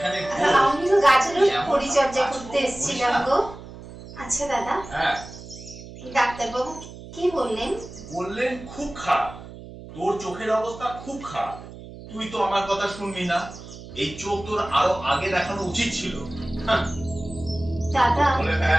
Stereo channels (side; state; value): right; noise; hum, 15 dB below the sound